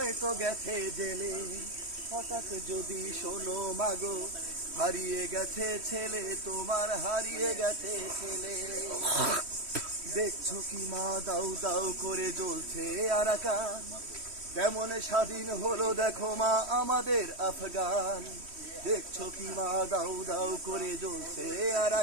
গেছে জেলে। হঠাৎ যদি শোনো মাগো হারিয়ে গেছে ছেলে তোমার, হারিয়ে গেছে ছেলে। দেখছো কি মা দাউ দাউ করে জ্বলছে আরাকান, কেমন স্বাধীন হলো দেখো মা আমাদের আফগান। দেখছো কি মা দাউ দাউ করে জ্বলছে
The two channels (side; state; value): left; late; 3.1 ms